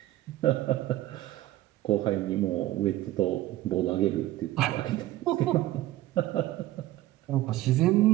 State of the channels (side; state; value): left; quieter; 15.6 dB